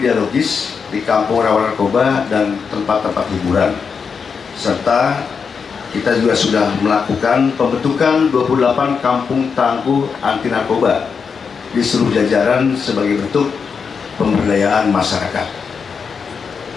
dialogis di kampung rawan narkoba dan tempat-tempat hiburan. Serta kita juga sudah melakukan pembentukan 28 kampung tangguh anti narkoba di seluruh jajaran sebagai bentuk pemberdayaan masyarakat.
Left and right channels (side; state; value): right; quieter; 5.9 dB